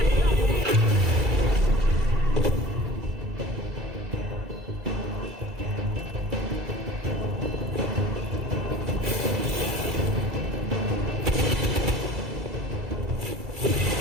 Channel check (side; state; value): both; normal; correlation 0.42